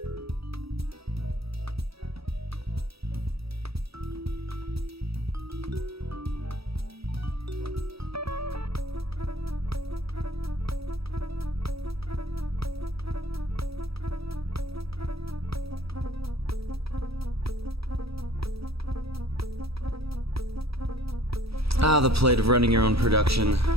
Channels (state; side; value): late; left; 0.77 ms